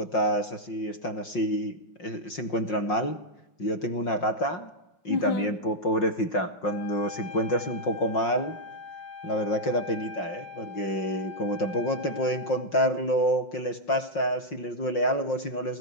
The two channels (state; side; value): late; right; 5.6 ms